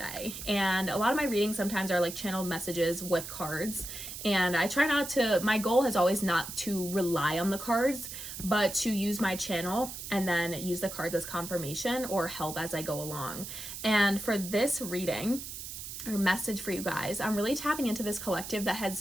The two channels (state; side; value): noise; right; hiss, 9 dB below the sound